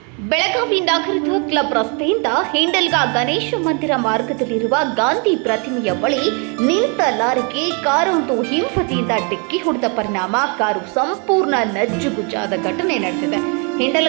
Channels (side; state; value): left; quieter; 35.2 dB